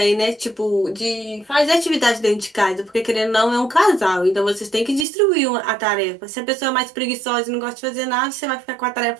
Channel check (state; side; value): drops out; left; at 5.1 s